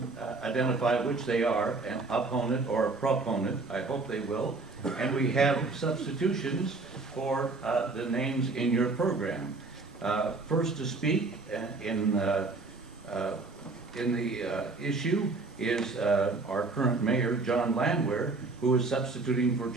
identify which they are, an opponent or a proponent. I hope they will. And we have substitutions for the names in your program. First to speak in the issue is our current mayor, John Landwehr, who is substituting for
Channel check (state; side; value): quieter; left; 3.7 dB